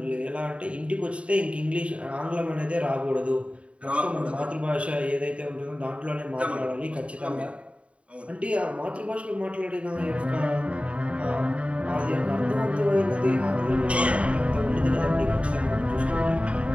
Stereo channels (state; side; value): late; left; 0.062 ms